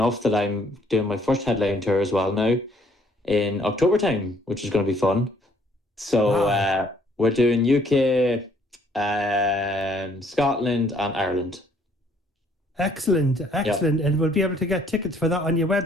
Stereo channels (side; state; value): both; normal; correlation 0.63